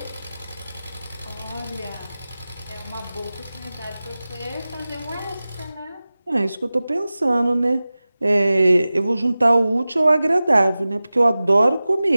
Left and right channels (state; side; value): inverted; both; correlation -0.96